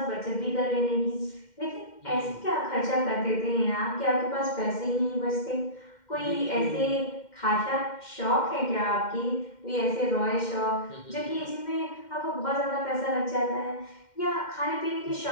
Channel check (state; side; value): late; right; 2.1 ms